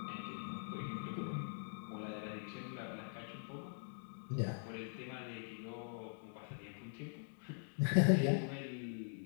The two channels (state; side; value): silent; right; digital silence